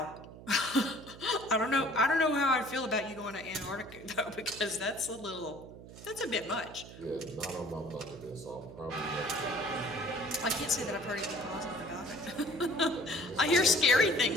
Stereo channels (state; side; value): noise; right; hum, 16 dB below the sound